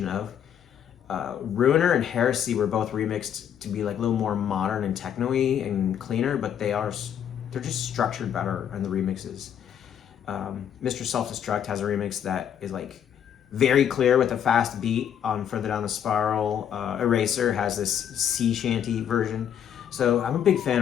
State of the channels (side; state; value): right; quieter; 9.2 dB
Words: of. Ruiner and Heresy were both remixed to be like a little more modern and techno-y and cleaner, but they're just structured better in the remixes. Mr. Self-Destruct has a remix that is like very clear with a fast beat on Further Down the Spiral. Eraser has this sea shanty version. So I'm a big fan